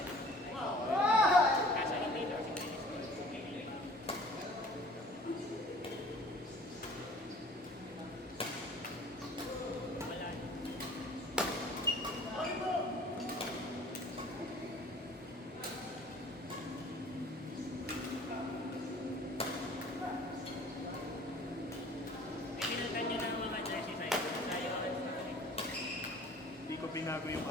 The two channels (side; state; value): both; normal; correlation 0.48